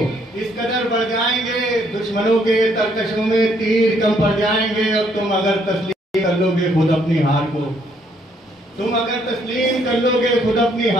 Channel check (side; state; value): both; normal; correlation 0.69